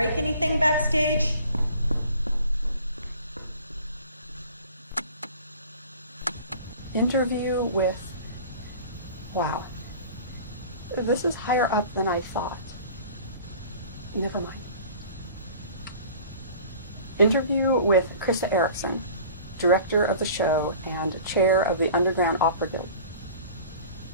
anything backstage. Interview with... Wow. This is higher up than I thought. Never mind. Interview with Krista Erickson, director of the show and chair of the Underground Opera Guild.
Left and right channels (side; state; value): both; inverted; correlation -0.44